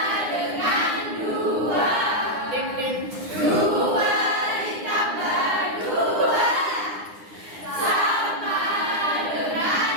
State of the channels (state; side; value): late; left; 9.8 ms